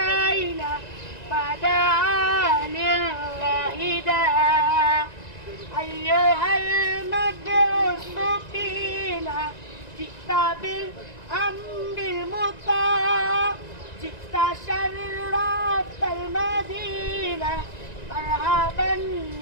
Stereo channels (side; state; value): right; late; 1.9 ms